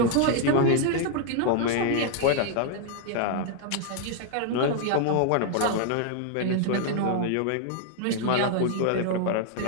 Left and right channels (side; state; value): both; different; correlation 0.00